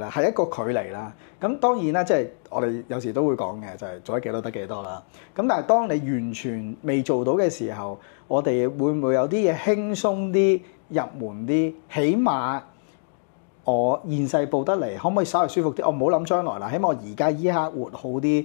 係一個距離啦。咁當然啦，即係我哋有時都會講嘅，就係做得幾多得幾多啦。咁但係當你完全未做到嘅時候，我哋會唔會有啲嘢輕鬆啲、入門啲，起碼我現世報得嚟，可唔可以稍為舒服啲？我唔好諗將來啦，起碼我而家依一刻活好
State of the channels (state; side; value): silent; right; digital silence